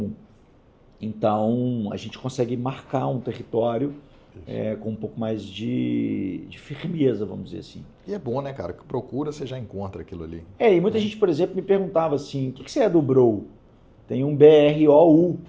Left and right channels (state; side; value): identical; both; correlation 1.00